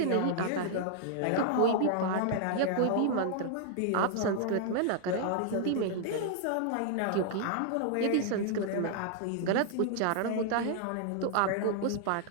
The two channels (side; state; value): both; different; correlation -0.01